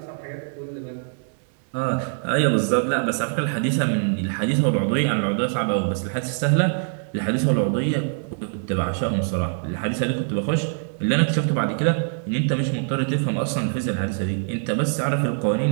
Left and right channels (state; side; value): silent; left; digital silence